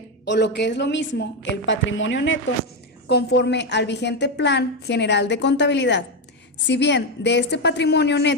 o lo que es lo mismo, el patrimonio neto, conforme al vigente Plan General de Contabilidad. Si bien de este patrimonio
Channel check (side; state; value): both; normal; correlation 0.08